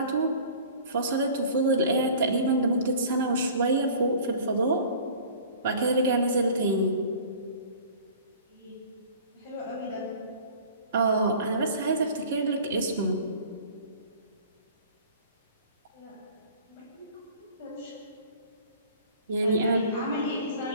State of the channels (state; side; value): inverted; both; correlation -0.45